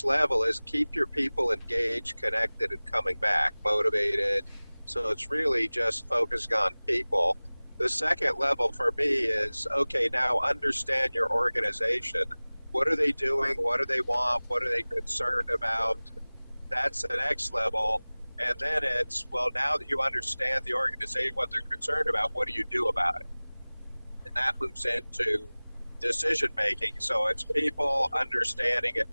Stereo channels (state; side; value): inverted; both; correlation -1.00